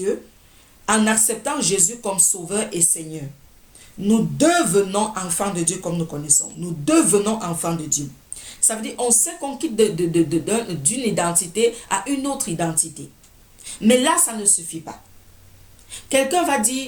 en acceptant Jésus comme Sauveur et Seigneur. Nous devenons enfants de Dieu comme nous connaissons. Nous devenons enfants de Dieu. Ça veut dire on sait qu'on quitte d'une identité à une autre identité. Mais là, ça ne suffit pas. Quelqu'un va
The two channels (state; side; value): identical; both; correlation 1.00